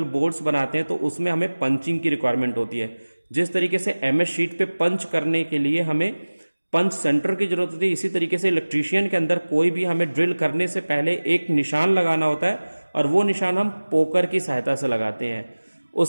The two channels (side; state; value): both; inverted; correlation -1.00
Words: बोर्ड्स बनाते हैं, तो उसमें हमें पंचिंग की रिक्वायरमेंट होती है। जिस तरीके से एमएस शीट पे पंच करने के लिए हमें पंच सेंटर की जरूरत होती है, इसी तरीके से इलेक्ट्रीशियन के अंदर कोई भी हमें ड्रिल करने से पहले एक निशान लगाना होता है और वो निशान हम पोकर की सहायता से लगाते हैं।